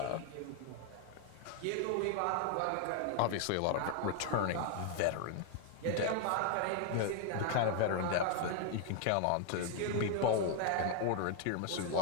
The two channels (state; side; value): different; both; correlation 0.00